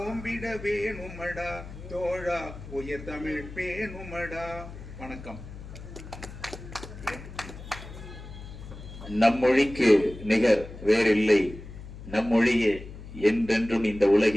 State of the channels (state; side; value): noise; left; hum, 13 dB below the sound